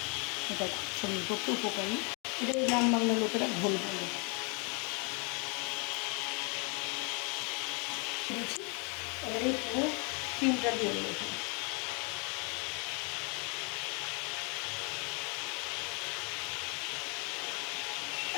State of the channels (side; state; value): right; quieter; 33.8 dB